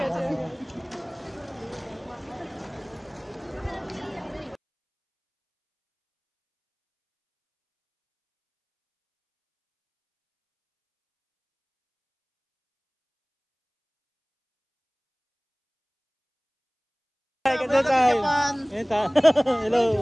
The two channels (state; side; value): identical; both; correlation 1.00